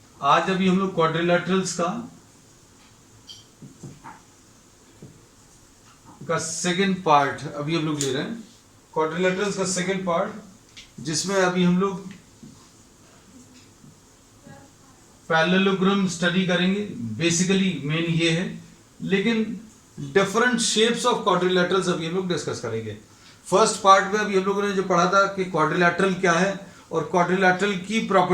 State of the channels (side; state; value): both; identical; correlation 1.00